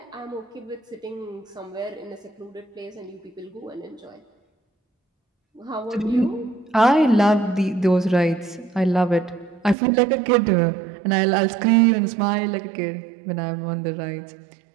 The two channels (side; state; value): left; drops out; at 9.8 s